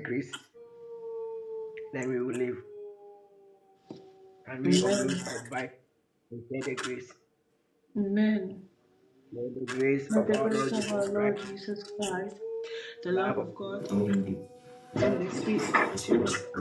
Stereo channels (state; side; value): identical; both; correlation 1.00